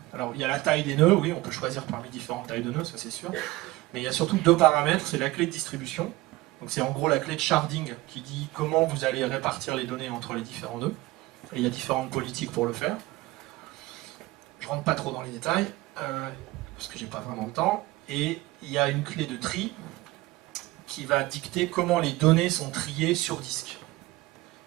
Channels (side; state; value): left; quieter; 19.3 dB